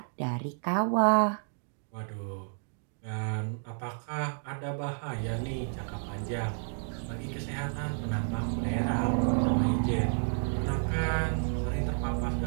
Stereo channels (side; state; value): left; silent; 57 dB below the other